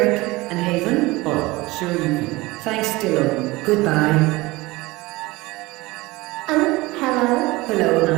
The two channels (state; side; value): quieter; left; 21.3 dB